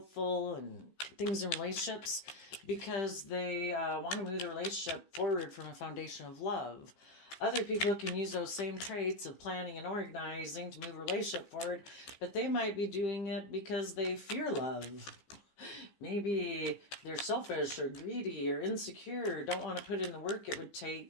and things in relationships because they want to move the relationship forward from a foundation of love. Other people can use those same traits of planning and organizing to move a relationship forward, but they might be doing it because they fear love. Maybe they're selfish or greedy or insecure, don't want to put in the work it would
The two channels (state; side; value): late; right; 15 ms